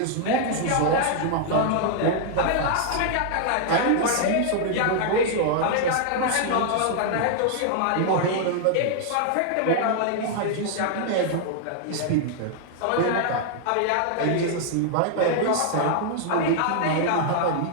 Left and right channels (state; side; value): different; both; correlation 0.00